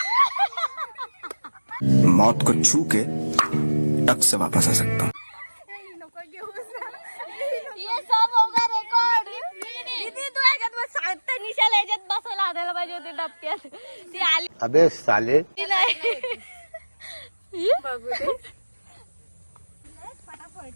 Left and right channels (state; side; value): inverted; both; correlation -1.00